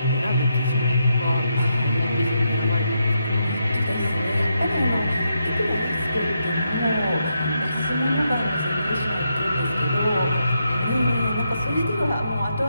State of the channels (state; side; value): inverted; both; correlation -0.81